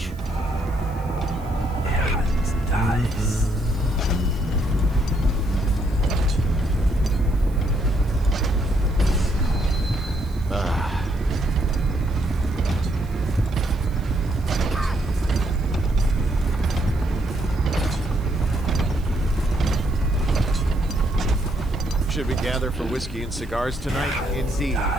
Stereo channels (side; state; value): right; noise; hiss, 26 dB below the sound